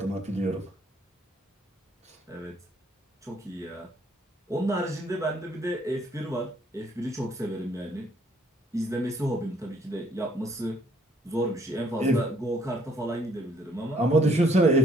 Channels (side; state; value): both; normal; correlation 0.64